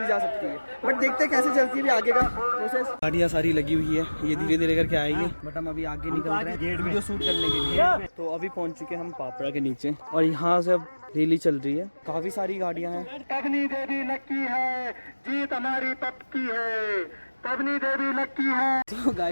जा सकती है, बट देखते हैं कैसे चलती है अभी आगे का प्रोसेस। गाड़ियाँ सारी लगी हुई है, ये धीरे धीरे करके आएगी, बट हम अभी आगे निकल रहे हैं वीडियो शूट करने के लिए। तो अभी पहुंच चुके हम पापड़ा के नीचे, और यहाँ से अब रैली चल रही है। काफी सारी गाड़ियाँ हैं। पवनी देवी लक्की है, जीत हमारी पक्की है, पवनी देवी लक्की है। तो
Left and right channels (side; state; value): both; inverted; correlation -1.00